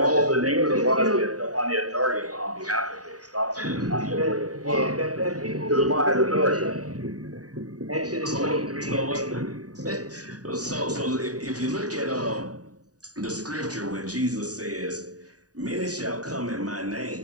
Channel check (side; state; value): left; late; 0.68 ms